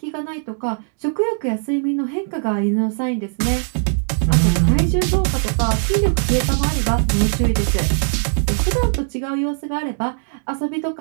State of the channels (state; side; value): silent; left; digital silence